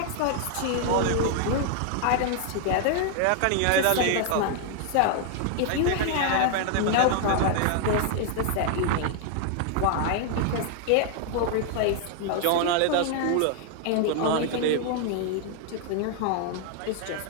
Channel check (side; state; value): both; different; correlation 0.00